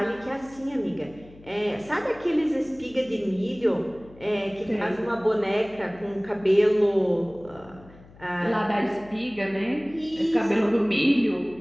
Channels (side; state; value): left; noise; hum, 23 dB below the sound